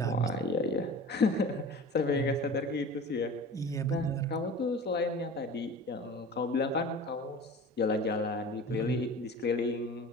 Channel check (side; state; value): both; normal; correlation 0.38